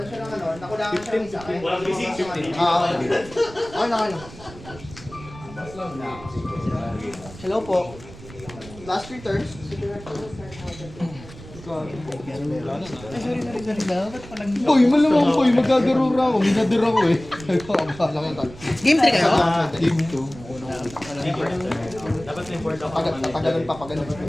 siya ng ano, nakulangan siya ng isa. Walang bisig, 15. Okay na. Hello po. Last 3 turns. Boy, malamang boy, magkagarura ako. Minadir ako eh. Game 3 kayo? Game 2. Dapat na-import ako. Tatagalan pa pag ano.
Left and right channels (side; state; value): right; noise; rumble, 17 dB below the sound